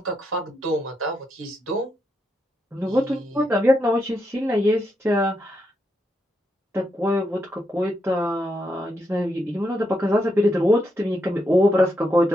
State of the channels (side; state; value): both; normal; correlation 0.82